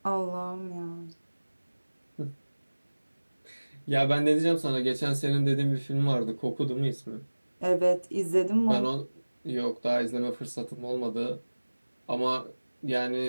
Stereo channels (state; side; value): inverted; both; correlation -1.00